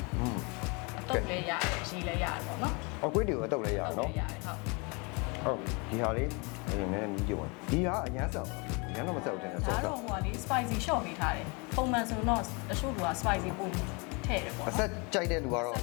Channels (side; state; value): right; quieter; 30.4 dB